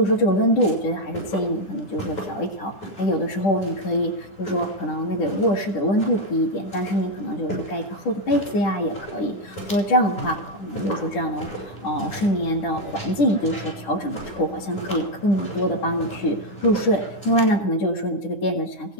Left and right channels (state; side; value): late; right; 9.9 ms